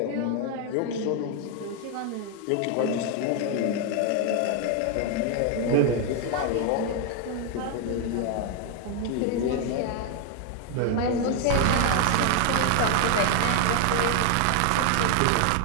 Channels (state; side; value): different; both; correlation 0.01